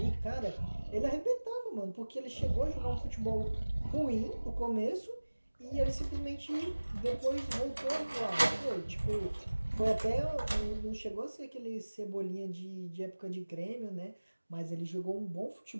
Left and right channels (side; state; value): both; inverted; correlation -1.00